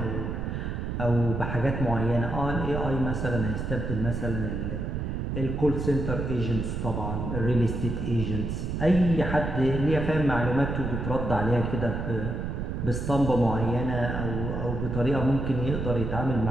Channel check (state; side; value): noise; right; rumble, 3 dB below the sound